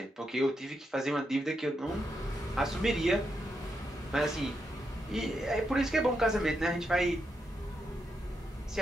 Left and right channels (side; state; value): both; normal; correlation 0.83